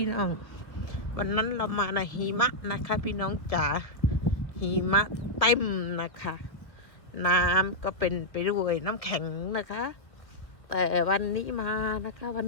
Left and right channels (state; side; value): late; right; 1.4 ms